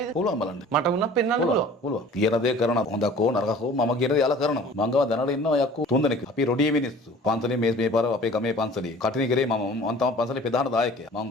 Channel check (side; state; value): both; normal; correlation 0.47